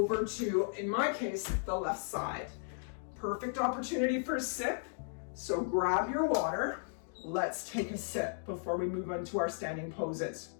to, in my case, the left side. Perfect opportunity for a sip. So grab your water. Let's take a sip before we move on to our standing poses.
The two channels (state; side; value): silent; right; digital silence